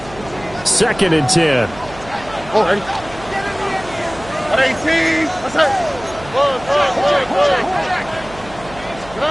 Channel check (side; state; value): right; noise; hum, 18 dB below the sound